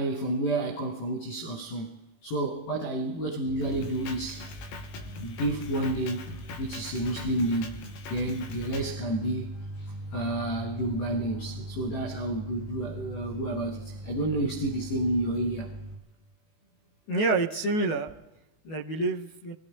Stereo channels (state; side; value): late; right; 19 ms